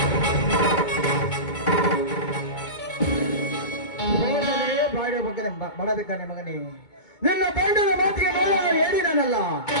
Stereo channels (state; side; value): late; right; 2.2 ms